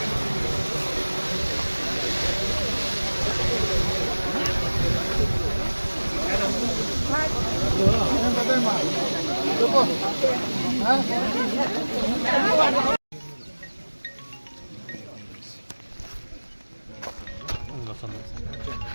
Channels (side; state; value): both; inverted; correlation -1.00